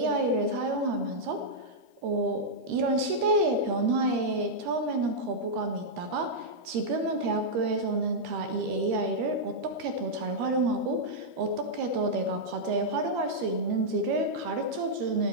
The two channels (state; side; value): late; left; 13 ms